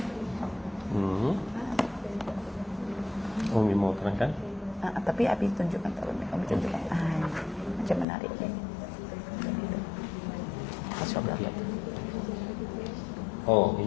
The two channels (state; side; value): drops out; right; at 8.1 s